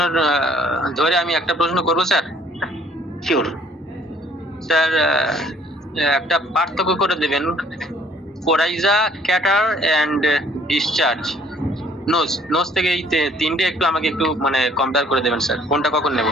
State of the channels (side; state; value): both; normal; correlation 0.58